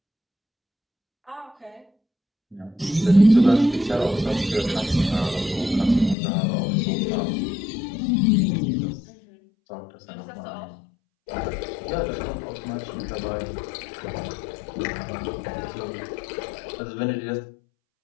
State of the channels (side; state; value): right; drops out; at 6.2 s